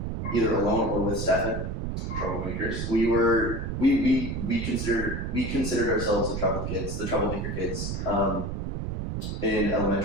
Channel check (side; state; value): right; noise; rumble, 3 dB below the sound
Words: either alone or with Stefan. Troublemakers. We considered ourselves the troublemaker kids, in